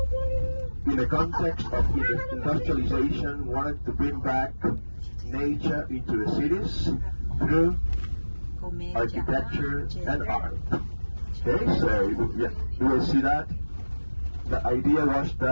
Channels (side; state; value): both; inverted; correlation -1.00